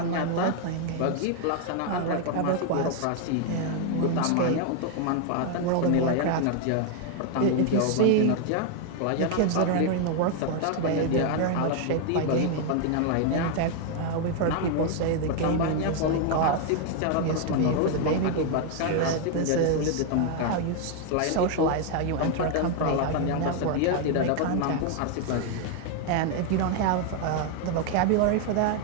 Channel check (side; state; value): both; different; correlation 0.00